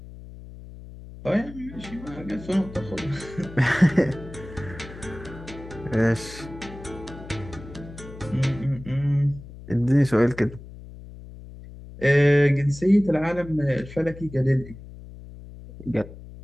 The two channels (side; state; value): left; noise; hum, 15 dB below the sound